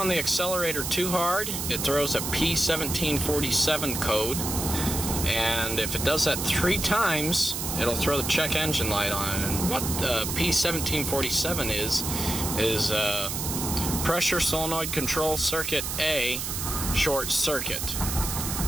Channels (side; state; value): right; noise; hiss, 3 dB below the sound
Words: the accelerator too hard, it throws a P1747 code, and if it does that 3 times, it'll throw the check engine light on. And what P1747 is pressure solenoid control circuit A short circuit.